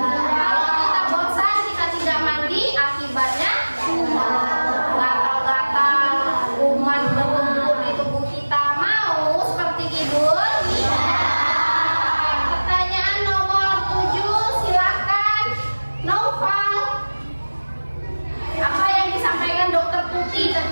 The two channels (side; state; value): both; inverted; correlation -1.00